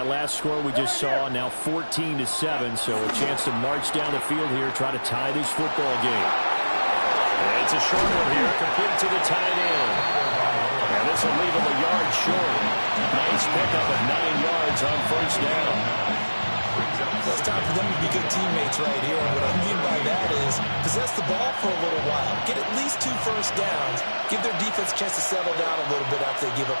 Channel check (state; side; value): inverted; both; correlation -1.00